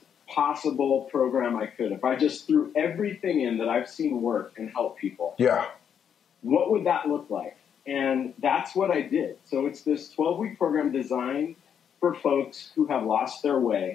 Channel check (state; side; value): quieter; right; 8.1 dB